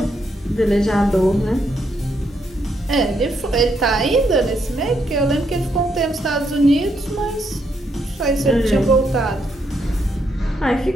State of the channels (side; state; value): both; normal; correlation 0.77